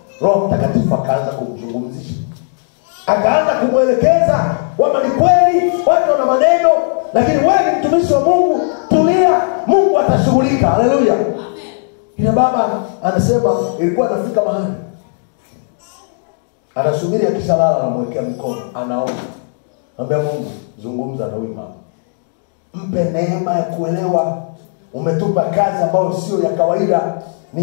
Roho Mtakatifu akaanza kumzungumzisha. Akaanza kumwelekeza kwamba ni kweli watu wana maneno, lakini wewe ni mtumishi wa Mungu, tulia, Mungu atashughulika. Haleluya. Amen. Ila baba anasema ilikuwa anafika mahali anasubiri akishalala, anamwekea mikono, anaomba. Anambia Mungu, zungumza na huyu mama. Mpe neema ya kuelewa. Umetupa kazi ambayo sio ya kawaida, ni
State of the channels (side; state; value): right; silent; digital silence